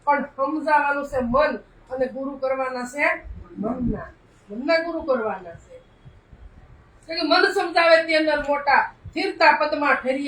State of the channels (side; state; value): both; identical; correlation 1.00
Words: પણ સમજાવવાનું છે મન, અને ગુરુ કરવાના છે મનના ગુરુ કરવાના છે. કે મન સમજાવે તે અંદર મોટા, સ્થિરતા પદમાં